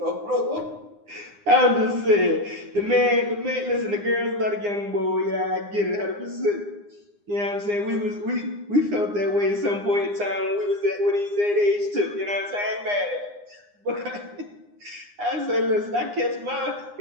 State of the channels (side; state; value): left; late; 9.8 ms